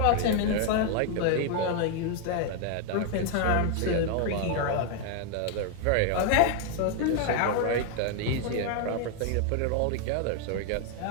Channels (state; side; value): different; both; correlation 0.01